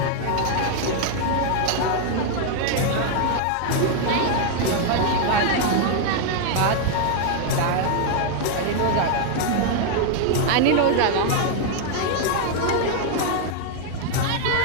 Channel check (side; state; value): both; different; correlation 0.00